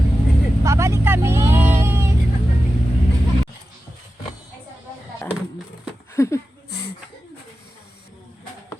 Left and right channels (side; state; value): both; normal; correlation 0.93